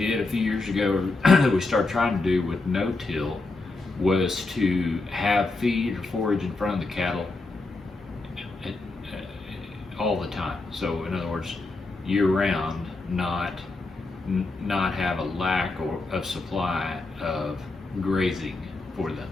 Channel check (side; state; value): right; quieter; 3.4 dB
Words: a few years ago that we started trying to do with no-till was to have feed or forage in front of the cattle all the time. So in other words, year-round, not have a lack of supply of grazing for them.